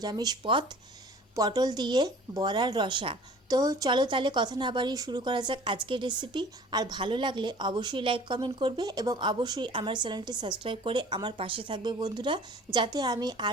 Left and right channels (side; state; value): both; normal; correlation 0.47